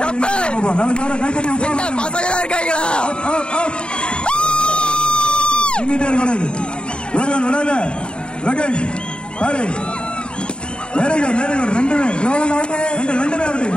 கப்பே பசங்க இருக்காங்களா? இங்கிட்டே கூடாது. ஒருவன் விடாத லோகேஷ் பாரு. Very good very good. ரெண்டுமே லோகன் அவுட். ரெண்டுமே அவுட்.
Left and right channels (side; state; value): right; late; 0.052 ms